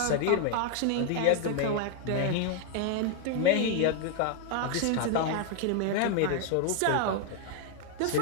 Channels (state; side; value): different; both; correlation 0.00